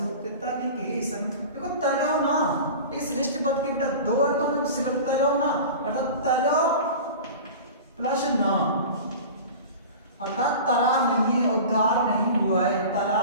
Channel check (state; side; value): inverted; both; correlation -0.36